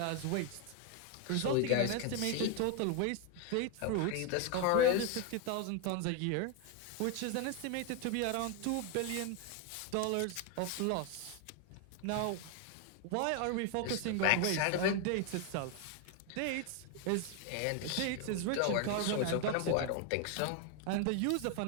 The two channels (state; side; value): different; both; correlation 0.01